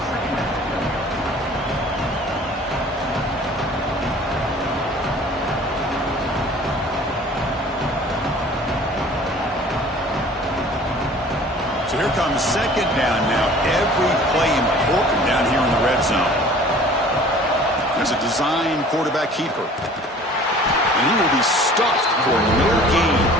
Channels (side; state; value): both; normal; correlation 0.48